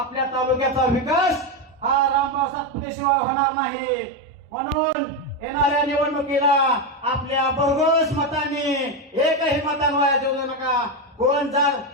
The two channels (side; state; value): both; normal; correlation 0.10